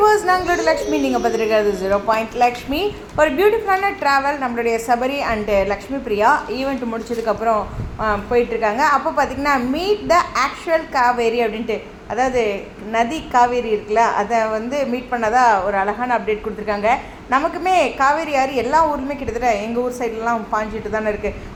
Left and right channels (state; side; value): identical; both; correlation 1.00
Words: நாங்களோட Lakshmi. நீங்கள் பார்த்துருக்கிறது 0 லக்ஷ்மி. ஒரு பியூட்டிஃபுல்லான ட்ராவல் நம்மளுடைய சபரி அண்டு லக்ஷ்மி பிரியா ஈவெண்ட் முடிச்சதுக்கப்புறம் போயிட்டுருக்காங்க. அப்போ பார்த்திங்கன்னா மீட் த ஆக்சுவல் காவேரி அப்படின்ட்டு, அதாவது நதி காவேரி இருக்குல்ல, அதை மீட் பண்ணதாக ஒரு அழகான அப்டேட் கொடுத்துருக்காங்க. நமக்குமே காவேரி ஆறு எல்லா ஊர்லேயுமே கிட்டத்தட்ட எங்கள் ஊர் சைட்லலாம் பாஞ்சிட்டு தானே இருக்குது.